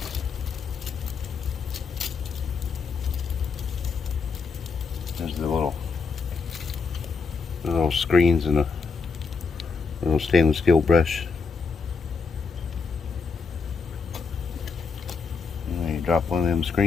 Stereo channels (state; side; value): quieter; right; 5.0 dB